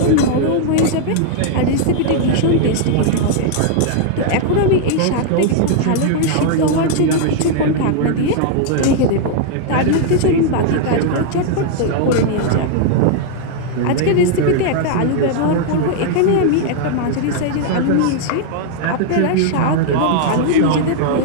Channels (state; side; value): different; both; correlation -0.01